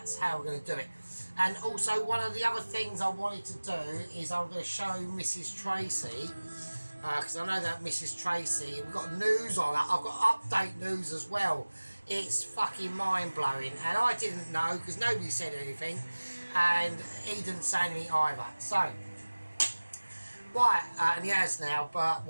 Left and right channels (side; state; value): both; inverted; correlation -1.00